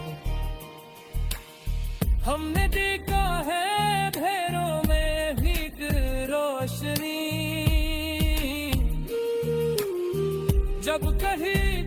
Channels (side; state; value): both; identical; correlation 1.00